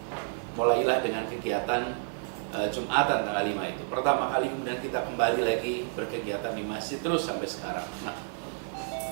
mulailah dengan kegiatan Jumatan tanggal 5 itu. Pertama kali kemudian kita kembali lagi berkegiatan di masjid terus sampai sekarang. Nah,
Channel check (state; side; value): silent; left; digital silence